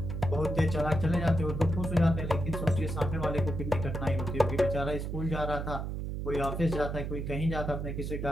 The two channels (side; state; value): right; noise; hum, 4 dB below the sound